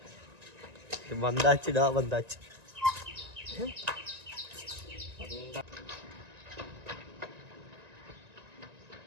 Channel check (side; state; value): left; late; 1.9 ms